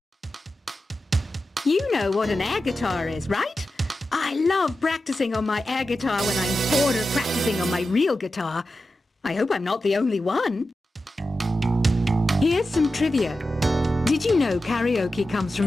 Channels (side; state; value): both; normal; correlation 0.92